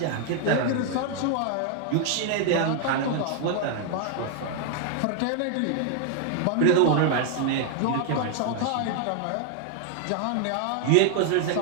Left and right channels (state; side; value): different; both; correlation 0.00